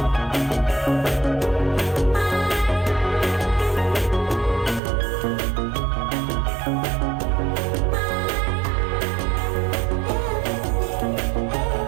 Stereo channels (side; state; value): left; drops out; at 4.8 s